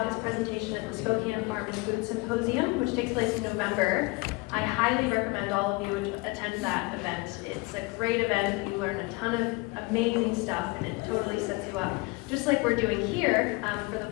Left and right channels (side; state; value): right; quieter; 25.0 dB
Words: his presentation at the Spokane Farm and Food Symposium, which takes place in November. I highly recommend all of you attend that event. It's a great event. You learn a ton of amazing stuff, and it totally sets you up, just like we're doing here for the